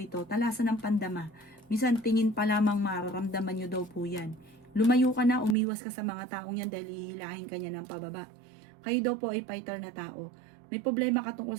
talasan ng pandama. Minsan tingin pa lamang mararamdaman nyo daw po yan. Lumayo ka na, umiwas ka sa mga taong yan dahil hihilahin ka niya ng pababa. Kayo daw po ay fighter na tao. May problema ka tungkol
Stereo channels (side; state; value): left; drops out; at 5.6 s